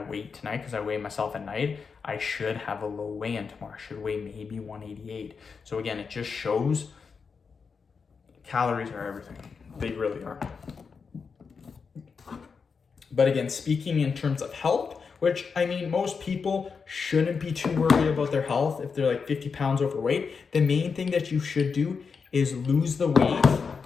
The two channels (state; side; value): quieter; right; 5.5 dB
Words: weight tonight, because I weigh myself at night, I should have a low weigh-in tomorrow. I should weigh maybe 188. So again, it just shows calories are everything. They really are. But again, speaking in terms of health, which I mean, most people shouldn't be too worried about their health if they're like 50 pounds overweight. The main thing that you should do is lose the weight